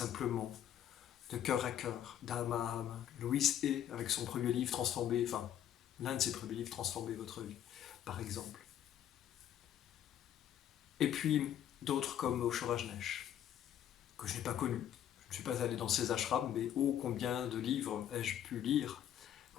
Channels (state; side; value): quieter; right; 10.5 dB